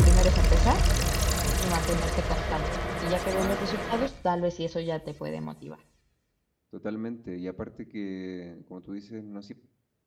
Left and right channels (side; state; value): both; identical; correlation 1.00